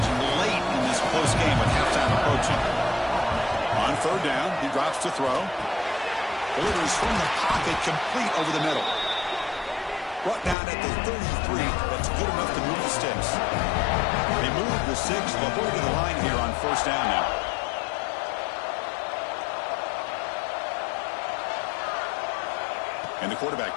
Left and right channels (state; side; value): drops out; right; at 10.6 s